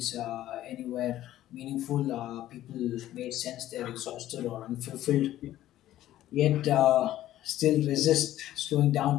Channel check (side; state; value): right; quieter; 13.6 dB